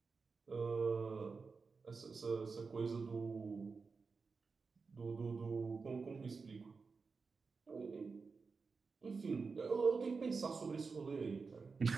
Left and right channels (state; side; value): quieter; left; 4.7 dB